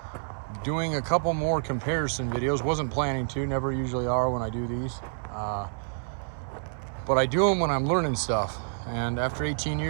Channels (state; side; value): silent; left; 59 dB below the other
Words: Doing a couple more comparison videos. Wasn't planning to, never usually are when I do these. But I do them when I'm learning stuff. And after 18